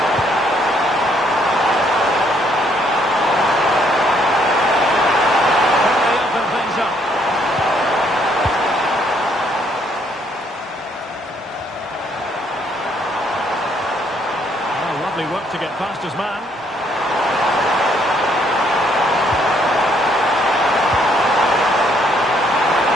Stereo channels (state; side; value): normal; both; correlation 0.68